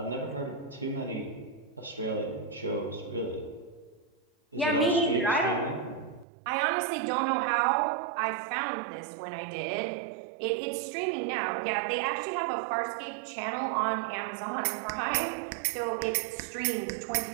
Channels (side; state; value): left; drops out; at 6.2 s